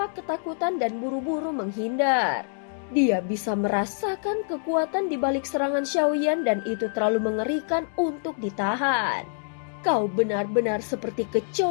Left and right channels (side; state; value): right; silent; digital silence